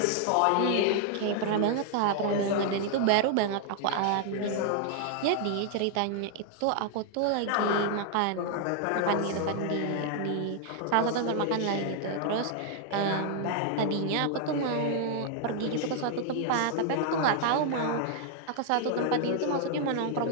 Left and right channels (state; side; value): different; both; correlation 0.00